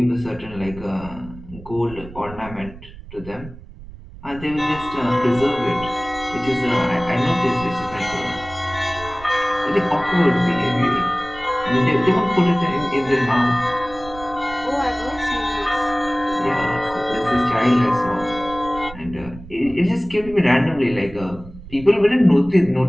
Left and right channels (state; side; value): noise; right; rumble, 16 dB below the sound